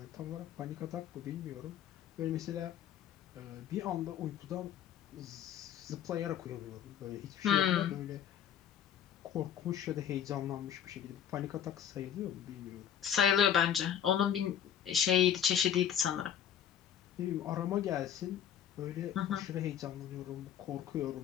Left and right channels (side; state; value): right; quieter; 9.5 dB